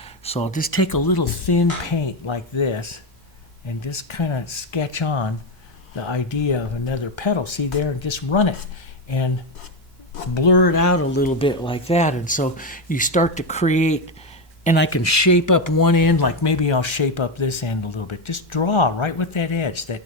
So I'll just take a little thin paint like this and just kind of sketch on the idea of another petal. See there, and just run it and blur it out a little bit like that. And so you start to create, and I can shape up one end, like maybe I'll shape up this end a little bit. Just draw right with that edge, that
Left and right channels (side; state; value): both; normal; correlation 0.10